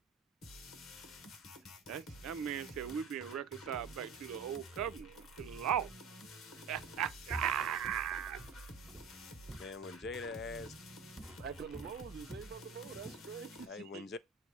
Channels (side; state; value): left; quieter; 6.0 dB